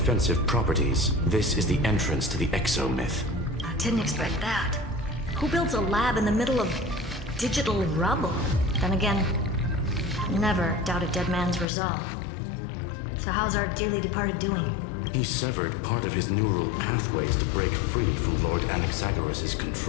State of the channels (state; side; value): drops out; right; at 11.7 s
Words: properties, this is the entrance to the Exo myth. I didn't expect that. Who builds a lab in the middle of digital rubble? Then again, never doubt a dead man's resolve. So how's our dearly departed doing? He severed part of his neural pathways to break free from Lord Anaxagoras'